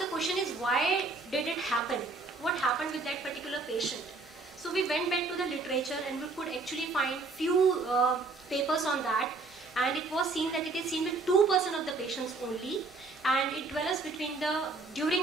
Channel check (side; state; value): left; quieter; 3.7 dB